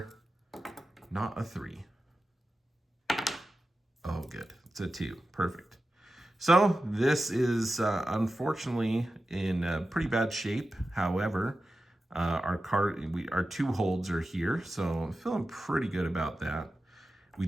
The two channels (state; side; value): normal; both; correlation 0.93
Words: not a 3. Oh, good, it's a 2, perfect. So this is unfortunately in pretty bad shape. However, our 2 holds are here, so I'm feeling pretty good about that. We